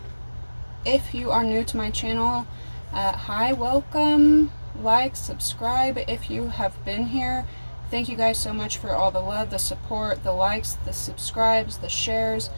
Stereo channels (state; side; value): inverted; both; correlation -1.00